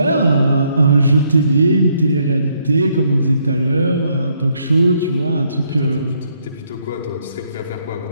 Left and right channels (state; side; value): inverted; both; correlation -0.72